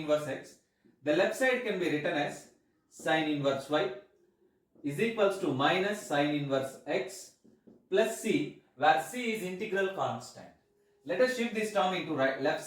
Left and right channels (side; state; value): both; identical; correlation 1.00